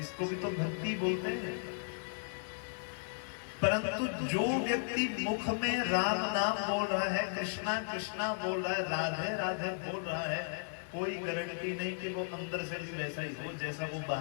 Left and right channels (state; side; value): silent; right; digital silence